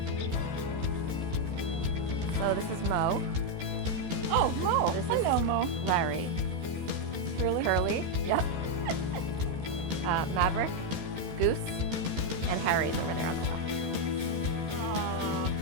So this is Mo. Oh, Mo. This is- Hello, Mo. Larry. Really? Curly. Yep. Maverick. Goose. And Harry's over there on the left.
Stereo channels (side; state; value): left; late; 13 ms